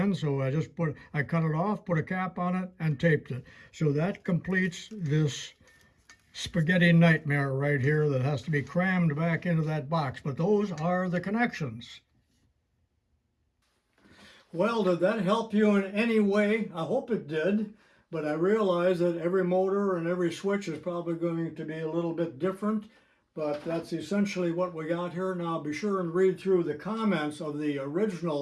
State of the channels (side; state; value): both; identical; correlation 1.00